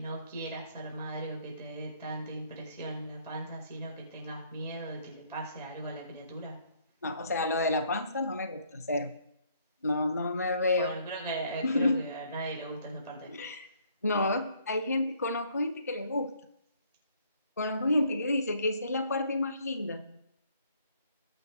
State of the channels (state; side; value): inverted; both; correlation -0.65